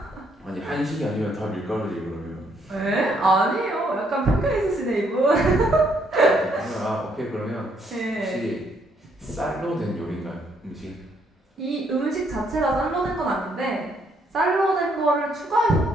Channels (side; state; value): both; normal; correlation 0.70